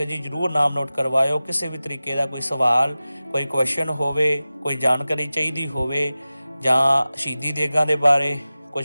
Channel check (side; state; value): both; inverted; correlation -0.96